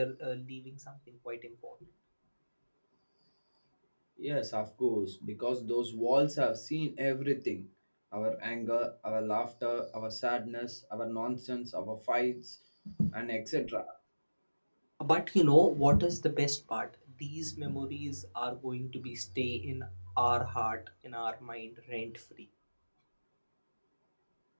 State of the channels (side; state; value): both; inverted; correlation -1.00